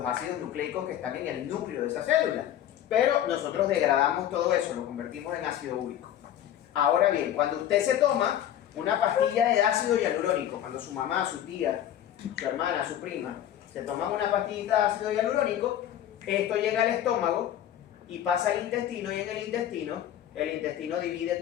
ácidos nucleicos que están en el núcleo de esa célula. Pero nosotros degradamos todo eso, lo convertimos en ácido úrico. Ahora bien, cuando usted se toma una pastilla de ácido hialurónico, cuando su mamá, su tía, su hermana, su prima, se toman una pastillita de ácido hialurónico, esto llega al estómago y pasa al intestino, y en el intestino divide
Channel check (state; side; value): quieter; right; 11.2 dB